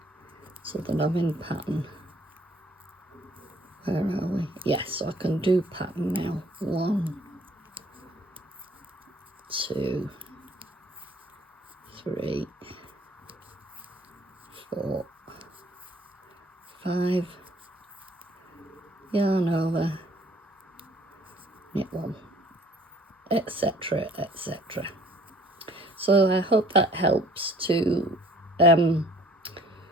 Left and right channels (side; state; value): both; normal; correlation 0.57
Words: So that I'm in pattern. Where are we? Yes, so I can do pattern now. 1, 2, 3, 4, 5, yarn over, knit 1, etc, etc. So I hope that helps to